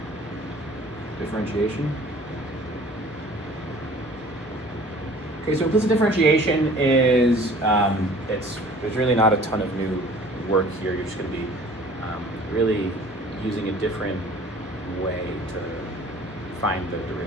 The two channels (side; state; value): both; normal; correlation 0.49